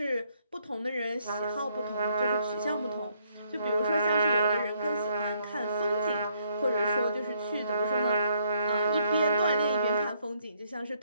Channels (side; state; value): both; inverted; correlation -0.70